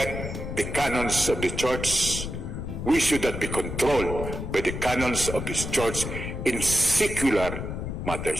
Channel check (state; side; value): noise; left; rumble, 5 dB below the sound